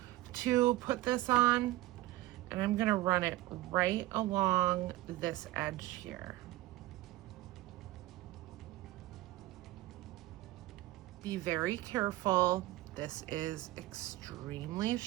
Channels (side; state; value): left; quieter; 17.1 dB